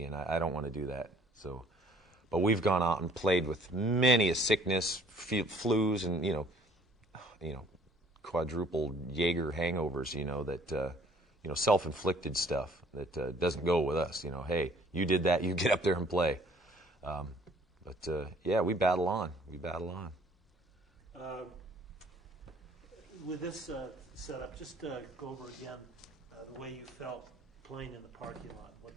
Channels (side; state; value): both; normal; correlation 0.57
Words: and I don't want to do that. But we've gone out and played with many a sickness, flus, and quadruple Jaeger hangovers, that self-inflicted stuff that doesn't go with us. Hey, you did that, you get up there and play. But we battle on. With this setup, just go over again the way you felt playing in the parking lot,